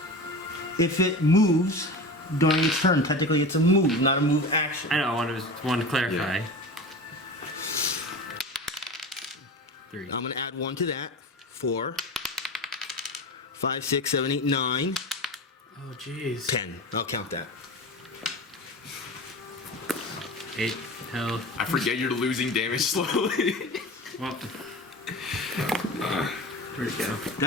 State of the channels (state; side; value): normal; both; correlation 0.31